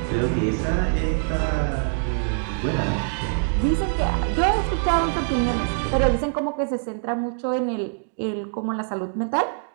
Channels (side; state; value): left; silent; digital silence